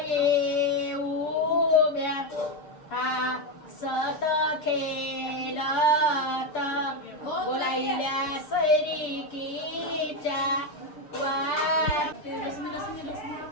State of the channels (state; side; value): late; right; 6.6 ms